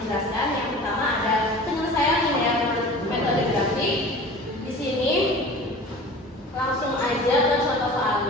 yang pertama ada penyelesaian linear metode grafik. Di sini langsung aja ke contoh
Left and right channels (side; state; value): both; normal; correlation 0.40